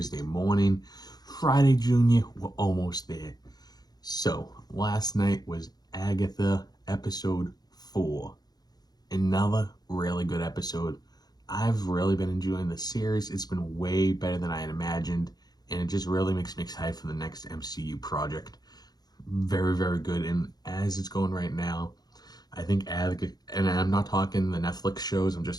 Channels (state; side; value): late; right; 0.19 ms